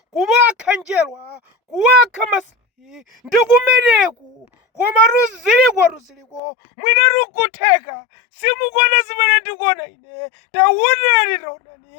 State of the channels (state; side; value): drops out; right; at 6.4 s